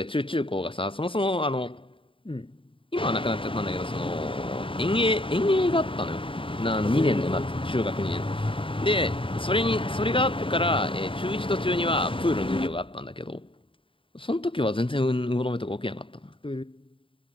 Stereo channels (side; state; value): right; late; 0.25 ms